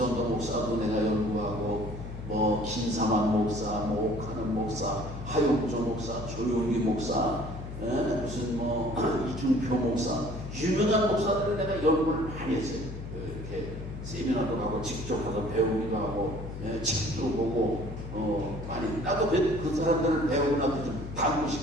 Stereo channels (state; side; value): noise; left; hum, 9 dB below the sound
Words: 목사도 내가 연구하고, 김사만 목사, 옥하는 목사, 하용조 목사, 조용기 목사, 무슨 이준표 목사, 유명한 목사들을 내가 연구를 많이 했어요. 이렇게 세미나도 가고 직접 가서 배우기도 하고, 책도 보고, 많이 나도 그 사람들을 배우고 나도 좀 닮고